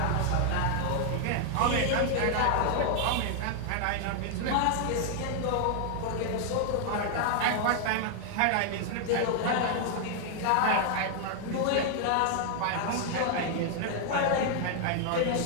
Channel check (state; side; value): different; both; correlation 0.00